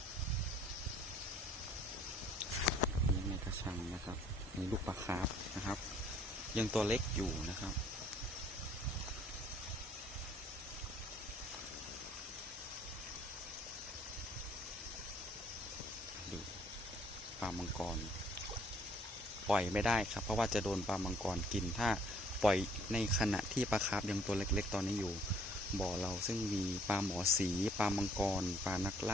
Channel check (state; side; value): normal; both; correlation 0.60